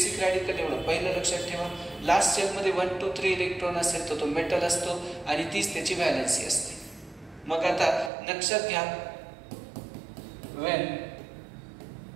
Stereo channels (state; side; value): drops out; left; at 8.1 s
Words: रॅडिकल, एवढं पहिलं लक्षात ठेवा. लास्ट शेलमध्ये 1 2 3 इलेक्ट्रॉन असेल तर तो मेटल असतो आणि तीच त्याची व्हॅलेन्सी असते. मग आता लक्षात घ्या, when